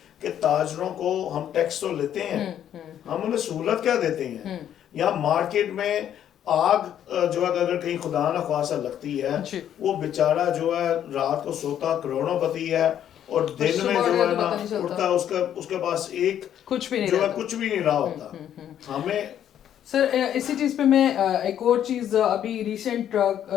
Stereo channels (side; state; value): right; quieter; 10.2 dB